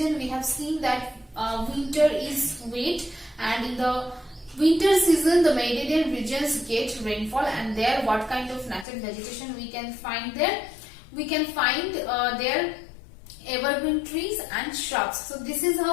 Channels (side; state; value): right; drops out; at 8.8 s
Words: we have seen that winter is wet, and in the winter season the Mediterranean regions get rainfall, and there what kind of natural vegetation we can find there? We can find there evergreen trees and shrubs. So this is